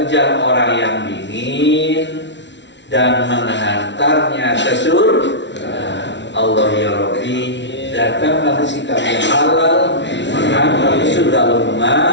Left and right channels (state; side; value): late; right; 0.52 ms